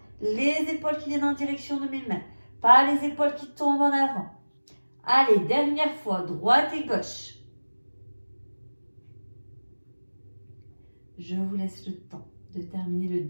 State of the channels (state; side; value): inverted; both; correlation -1.00